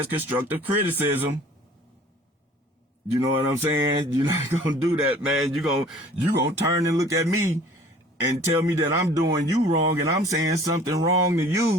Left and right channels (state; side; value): normal; both; correlation 0.50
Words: constructive criticism. You know what I'm saying? You're not gonna do that, man. You gonna turn and look at me and tell me that I'm doing you wrong and I'm saying something wrong to